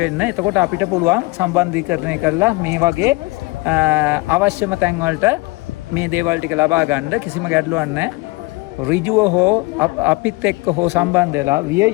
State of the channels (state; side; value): quieter; right; 23.6 dB